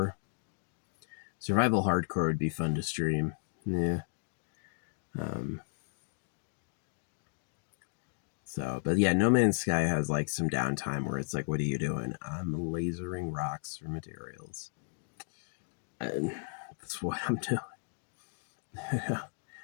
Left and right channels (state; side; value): silent; right; 55 dB below the other